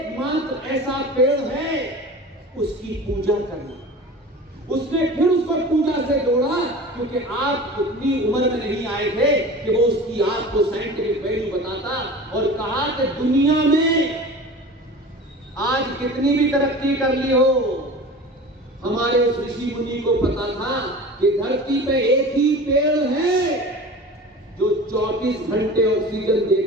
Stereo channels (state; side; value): normal; both; correlation 0.37